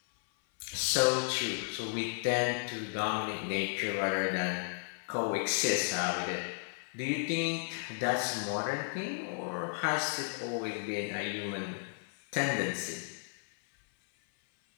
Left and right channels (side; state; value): right; silent; 55 dB below the other